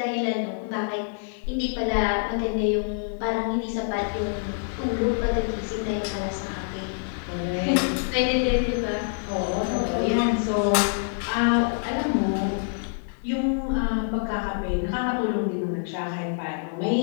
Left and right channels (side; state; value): right; silent; digital silence